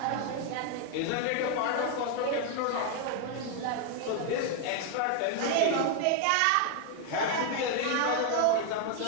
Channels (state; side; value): different; both; correlation 0.00